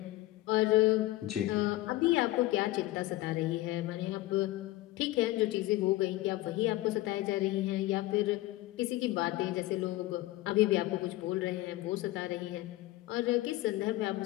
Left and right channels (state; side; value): quieter; right; 17.5 dB